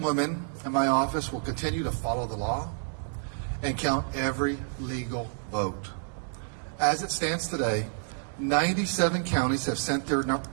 women in my office will continue to follow the law and count every legal vote. As it stands today, 97 counties have sent their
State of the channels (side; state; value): left; silent; digital silence